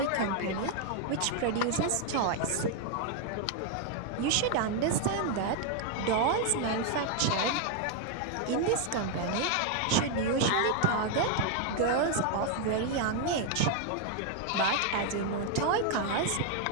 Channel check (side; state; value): both; different; correlation 0.00